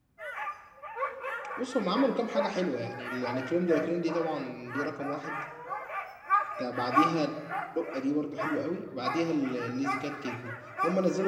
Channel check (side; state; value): both; identical; correlation 1.00